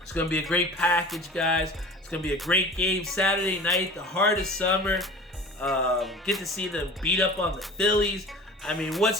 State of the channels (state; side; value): normal; both; correlation 0.39